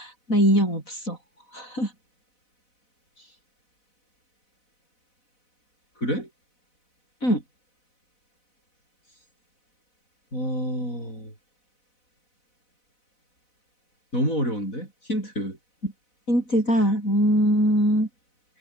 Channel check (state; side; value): late; right; 4.0 ms